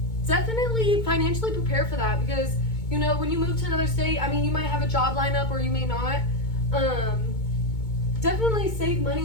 Definitely financially prepare for that, because you know, when you move to another state, I mean, you might have a job lineup or you may not. Definitely save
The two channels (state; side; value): late; right; 2.2 ms